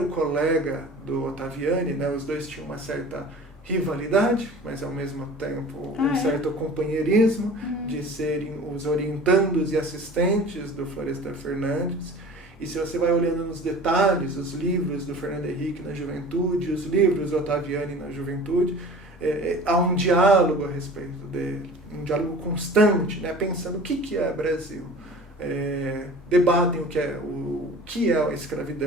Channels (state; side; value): normal; both; correlation 0.41